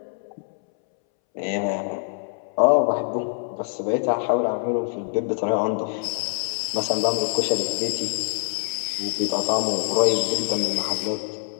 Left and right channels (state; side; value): silent; right; 62 dB below the other